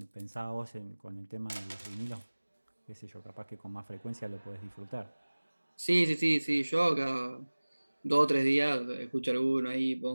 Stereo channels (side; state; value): both; inverted; correlation -1.00